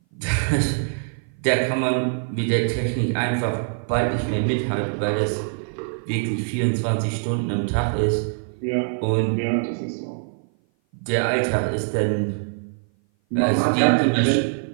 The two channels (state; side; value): silent; left; 57 dB below the other